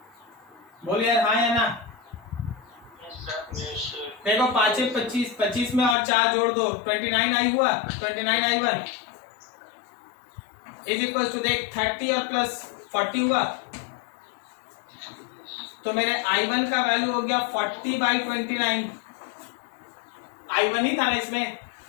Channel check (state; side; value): drops out; right; at 6.0 s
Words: बोल यार हाँ या ना। देखो 5 25, 25 में और 4 जोड़ दो, 29i हुआ। 29i1 इज इक्वल टू, देख 30 और प्लस 40 हुआ, तो मेरे i1 का वैल्यू हो गया 40/29। i1 ही था ना इसमें।